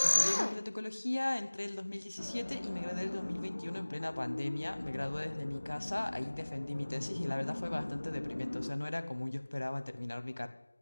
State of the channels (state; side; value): inverted; both; correlation -1.00